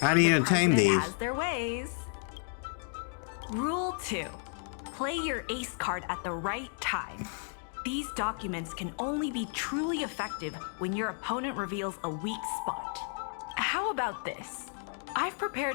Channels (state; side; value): silent; right; 56 dB below the other